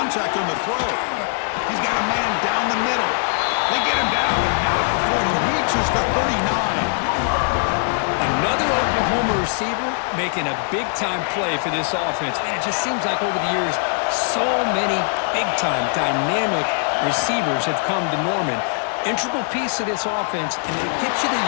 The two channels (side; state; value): right; silent; 59 dB below the other